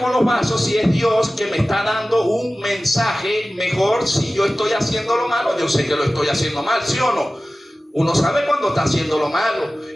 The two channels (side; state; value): both; normal; correlation 0.96